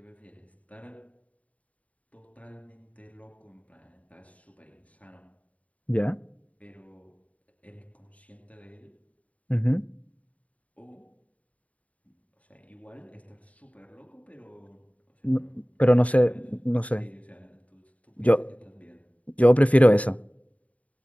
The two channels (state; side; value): late; right; 0.068 ms